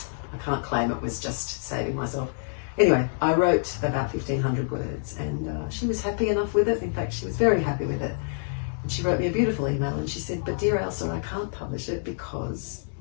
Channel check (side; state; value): right; silent; digital silence